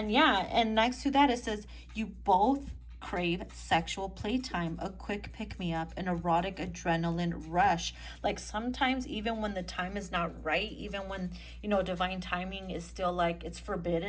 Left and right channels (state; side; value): identical; both; correlation 1.00